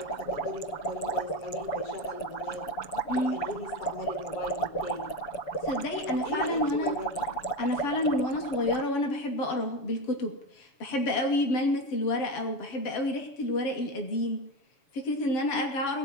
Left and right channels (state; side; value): late; right; 7.1 ms